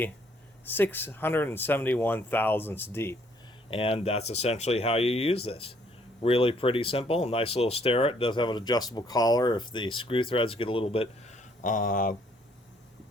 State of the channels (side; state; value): both; normal; correlation 0.65